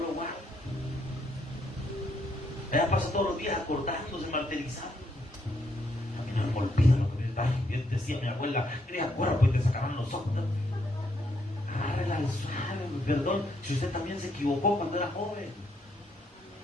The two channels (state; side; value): normal; both; correlation 0.74